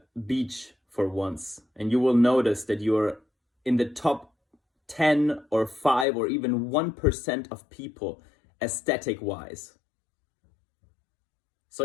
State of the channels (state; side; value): drops out; right; at 6.1 s